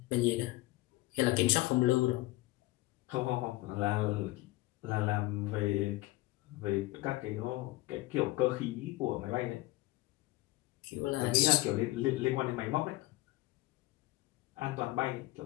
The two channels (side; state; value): right; quieter; 19.6 dB